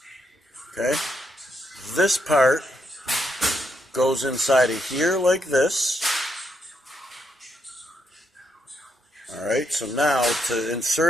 Okay? This part goes inside of here like this. Alright, so now to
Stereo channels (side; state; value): both; normal; correlation 0.78